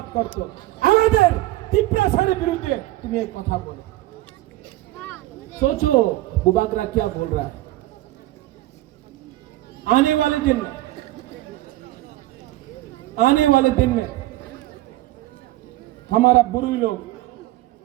করতে। আমাদের টিপ্রাসারের বিরুদ্ধে তুমি এই কথা বলো। सोचो बुबागरा क्या बोल रहा है। आने वाले दिन में, आने वाले दिन में हमारा बुरी लोग,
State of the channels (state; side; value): quieter; left; 16.9 dB